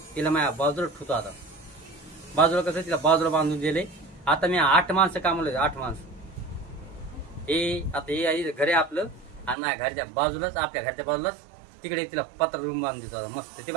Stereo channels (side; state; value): left; drops out; at 9.6 s